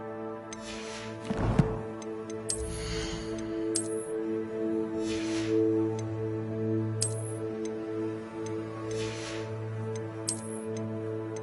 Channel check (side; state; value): both; identical; correlation 1.00